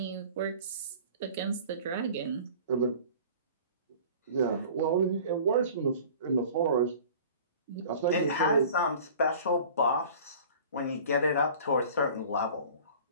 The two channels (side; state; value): both; inverted; correlation -0.44